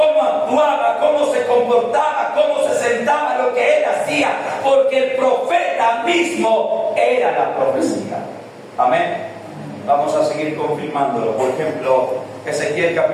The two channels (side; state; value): both; identical; correlation 1.00